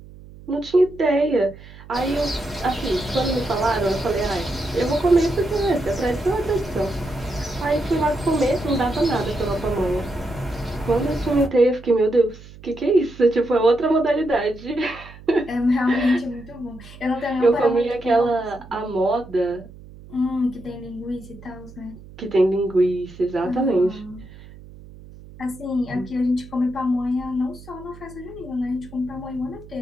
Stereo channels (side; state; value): right; noise; hum, 19 dB below the sound